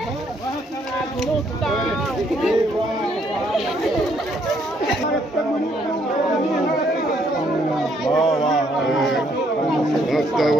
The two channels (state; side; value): normal; both; correlation 0.69